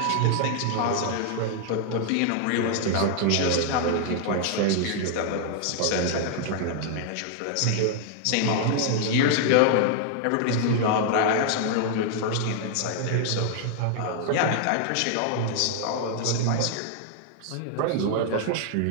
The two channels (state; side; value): different; both; correlation 0.00